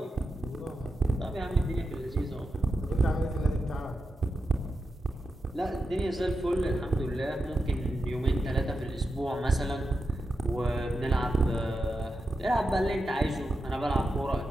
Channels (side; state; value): both; normal; correlation 0.88